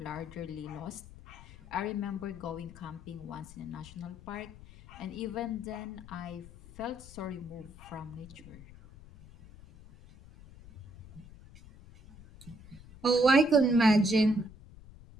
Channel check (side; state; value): left; noise; rumble, 18 dB below the sound